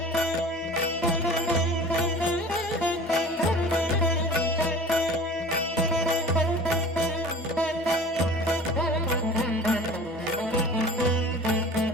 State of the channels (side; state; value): both; normal; correlation 0.41